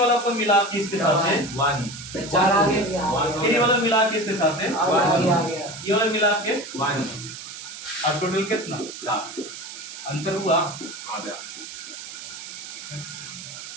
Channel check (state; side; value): noise; right; hiss, 11 dB below the sound